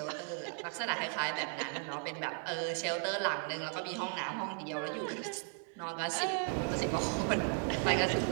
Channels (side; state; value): left; quieter; 38.1 dB